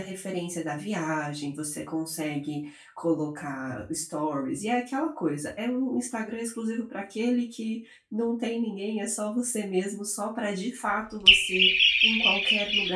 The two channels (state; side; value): identical; both; correlation 1.00